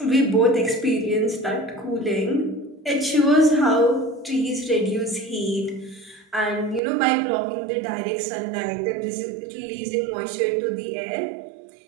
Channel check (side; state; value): left; drops out; at 6.8 s